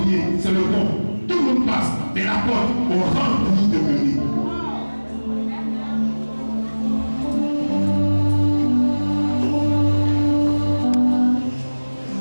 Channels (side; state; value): both; inverted; correlation -1.00